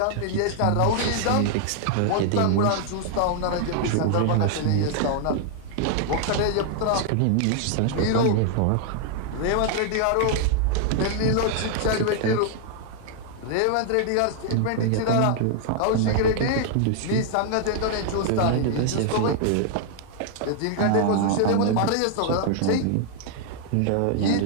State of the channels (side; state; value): both; different; correlation 0.00